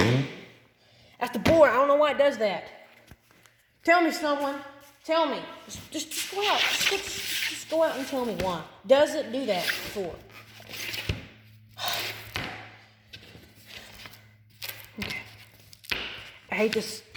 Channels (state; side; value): identical; both; correlation 1.00